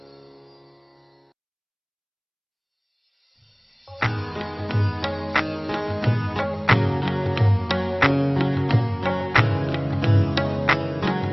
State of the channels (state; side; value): identical; both; correlation 1.00